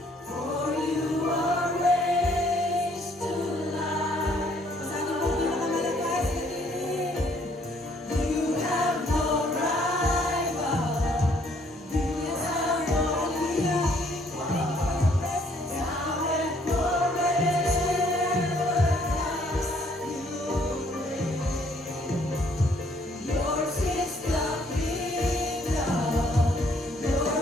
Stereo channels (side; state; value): both; normal; correlation 0.65